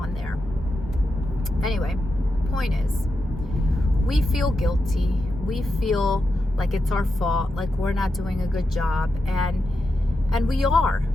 there. Anyway, point is, we feel guilty. We feel like it's our fault, like we're not doing a good job. And we are.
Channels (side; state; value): both; normal; correlation 0.88